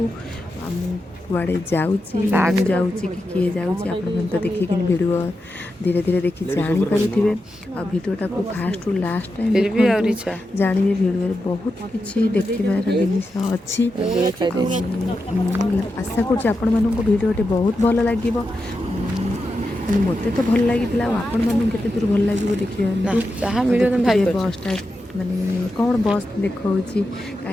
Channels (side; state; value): both; normal; correlation 0.88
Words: कुआड़े जाऊँगी कि किए जाऊँगी आपण तो देखिक भिडियो धीरे धीरे देखी जानीपारे आ भिडियोटा को फास्ट टू लास्ट टाइम जानवे भिडियो बहुत किसी देखार जिन अच्छी आशा कर भिडियोटे बहुत भल लगे मत तो भल लगी आपण मानते दूर भल लगे देखिए बसटा माने कौन बस देखी